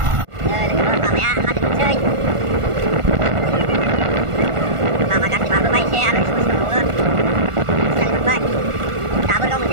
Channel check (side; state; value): left; late; 1.4 ms